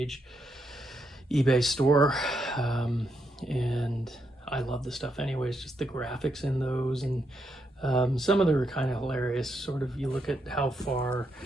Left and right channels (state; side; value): normal; both; correlation 0.80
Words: eBay store. And I love the stuff anyways, just the graphics in those. And some of them are kind of hilarious. Sort of, you look at how far